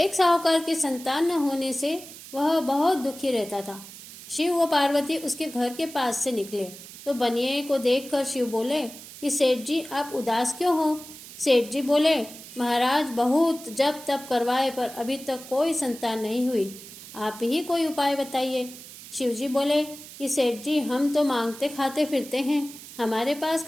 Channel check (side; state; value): right; noise; hiss, 15 dB below the sound